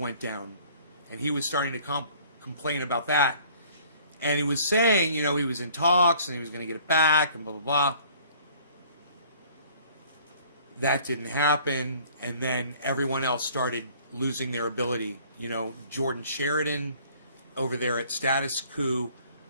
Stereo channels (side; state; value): both; inverted; correlation -0.54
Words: down, and he was starting to complain about that. And he was saying, you know, he was in talks and he was going to get it back and blah, blah, blah. That didn't happen. And then everyone else started losing their ability. You know, Jordan Sheridan over there at Status Coup.